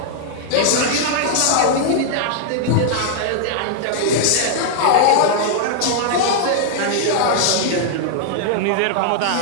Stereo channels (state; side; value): different; both; correlation -0.01